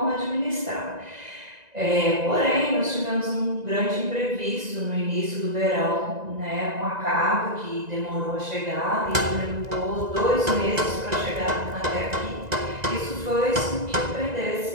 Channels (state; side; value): late; left; 1.9 ms